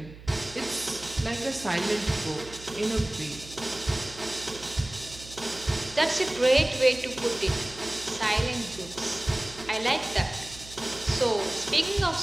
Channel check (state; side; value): noise; right; hum, 17 dB below the sound